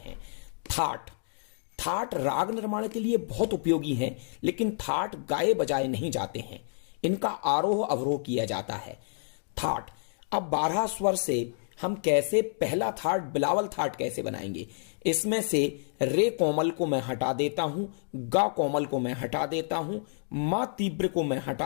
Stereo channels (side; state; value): right; silent; digital silence